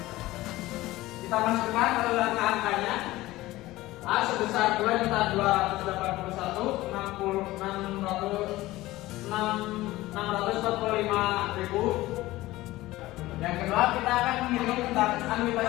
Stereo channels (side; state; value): right; quieter; 17.7 dB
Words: kita masukkan angka-angkanya. A sebesar 2.245.000. Yang kedua, kita akan menghitung tentang anuitas